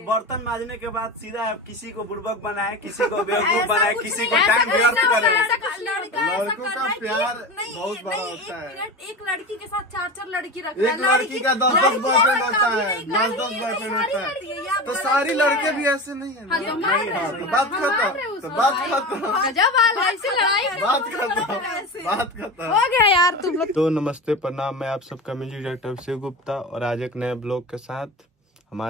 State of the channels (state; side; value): normal; both; correlation 0.27